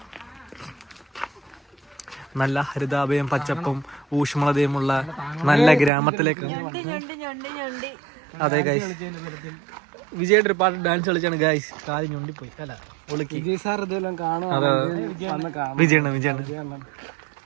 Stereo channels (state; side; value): drops out; left; at 5.9 s